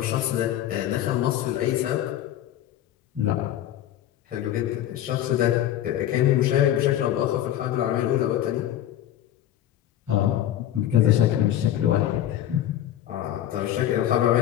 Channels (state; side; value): quieter; right; 12.0 dB